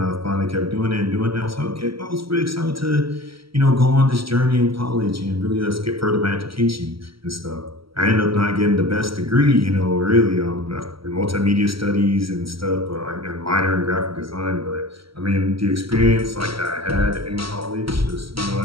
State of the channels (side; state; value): left; late; 0.75 ms